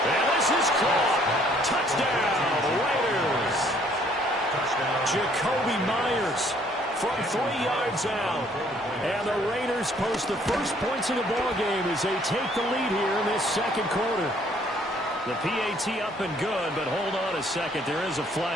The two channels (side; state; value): both; normal; correlation 0.62